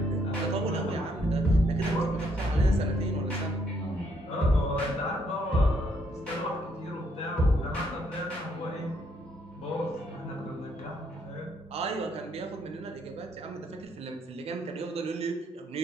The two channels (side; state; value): both; normal; correlation 0.71